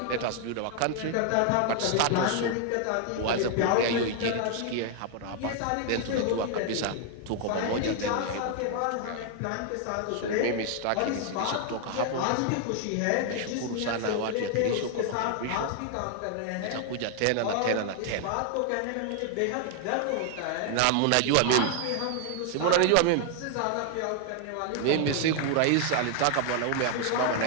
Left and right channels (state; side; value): different; both; correlation 0.00